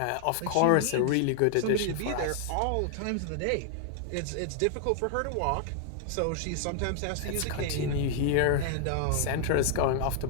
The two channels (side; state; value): both; different; correlation 0.00